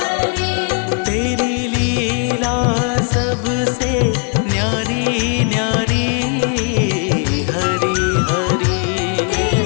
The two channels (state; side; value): quieter; right; 39.5 dB